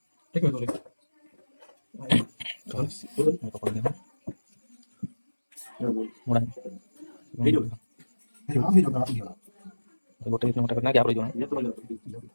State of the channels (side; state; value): both; inverted; correlation -1.00